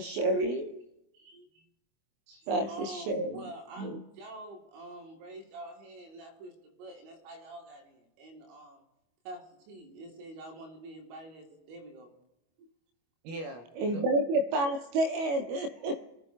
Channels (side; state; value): left; late; 25 ms